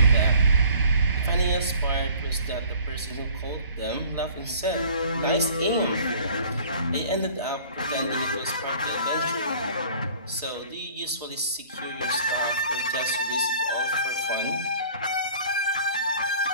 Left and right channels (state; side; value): inverted; both; correlation -0.51